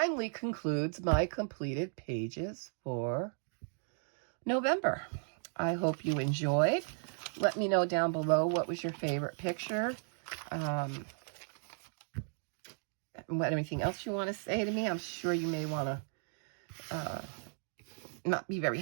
concludes my completed pages for November. I hope you enjoyed. Let me know down below what was your favorite picture. Anything else you want to say to me. I'm sure you may want to not be very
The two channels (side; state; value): left; silent; 54 dB below the other